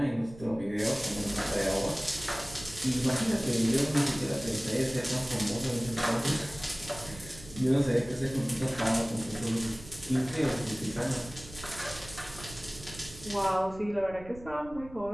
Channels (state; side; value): noise; right; rumble, 17 dB below the sound